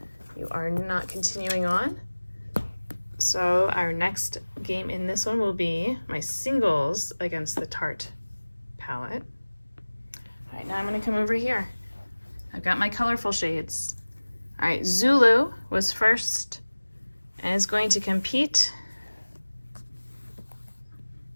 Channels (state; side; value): inverted; both; correlation -1.00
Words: You are not continuing on. So our next game in this one will be my singles against the Tarte palette. All right, now I'm gonna come over here. I've got my colorful shades. All right, Zulu was first and is going to compete